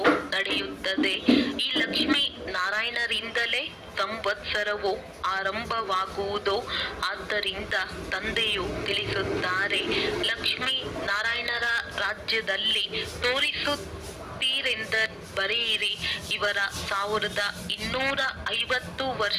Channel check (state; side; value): identical; both; correlation 1.00